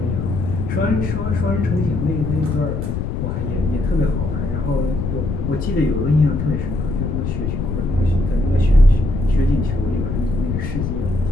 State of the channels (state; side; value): noise; left; rumble, 2 dB below the sound